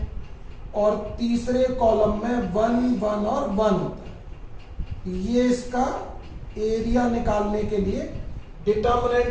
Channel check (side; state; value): both; identical; correlation 1.00